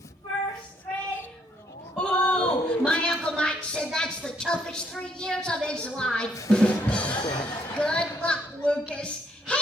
First grade. Oh, my Uncle Mike said that's the toughest 3 years of his life. Good luck, Lucas.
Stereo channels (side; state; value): both; normal; correlation 0.70